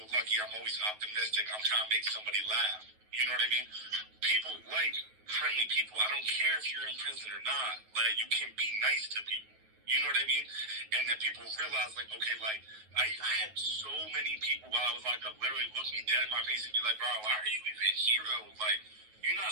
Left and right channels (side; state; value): left; late; 9.3 ms